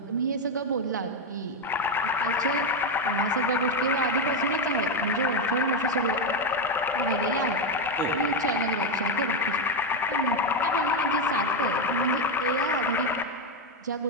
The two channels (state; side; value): normal; both; correlation 0.08